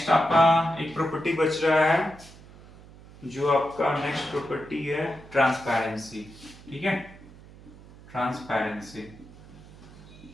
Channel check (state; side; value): noise; right; hum, 20 dB below the sound